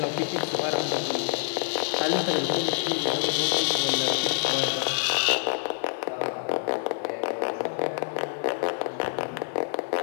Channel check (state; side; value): silent; right; digital silence